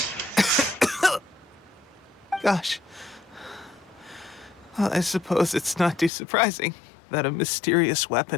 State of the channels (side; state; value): right; drops out; at 6.1 s